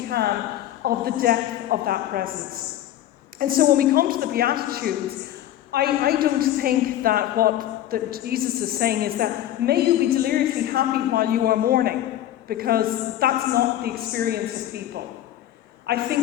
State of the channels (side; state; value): right; quieter; 12.7 dB